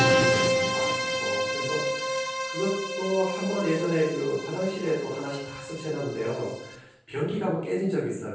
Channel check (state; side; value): identical; both; correlation 1.00